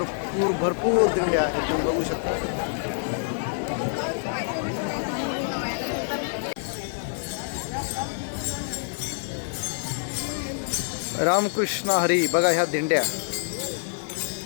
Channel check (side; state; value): right; silent; digital silence